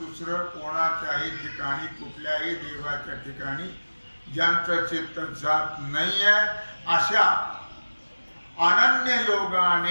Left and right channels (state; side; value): inverted; both; correlation -1.00